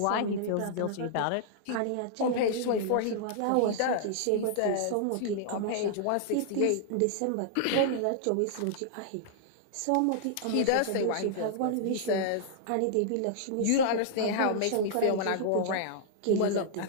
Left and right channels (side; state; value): both; different; correlation -0.01